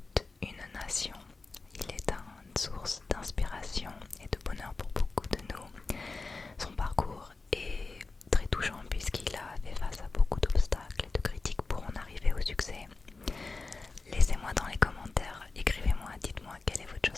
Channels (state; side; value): quieter; right; 3.8 dB